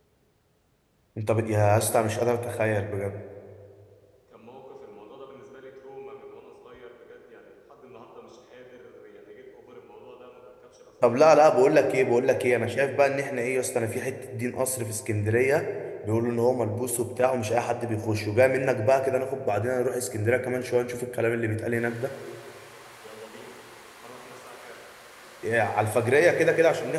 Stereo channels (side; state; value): both; identical; correlation 1.00